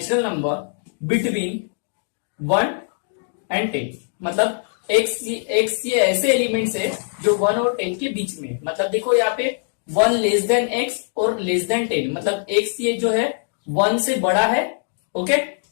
number between 1 and 10। मतलब एक्स ये ऐसे एलिमेंट्स है जो 1 और 10 के बीच में, मतलब देखो यहाँ पे 1 लेस देन एक्स और लेस देन 10, मतलब एक्स ये जो है 1 से बड़ा है, ओके,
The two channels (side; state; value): right; silent; digital silence